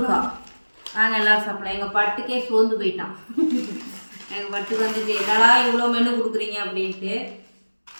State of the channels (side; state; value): both; inverted; correlation -1.00